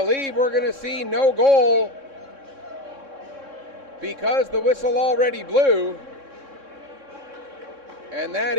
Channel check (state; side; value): late; left; 3.6 ms